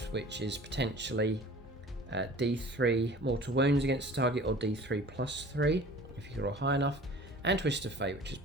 which is potentially D3 mortal wounds against the target, or D3 plus 3 if you roll high enough, and Twist of Fate, which is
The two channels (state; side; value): normal; both; correlation 0.44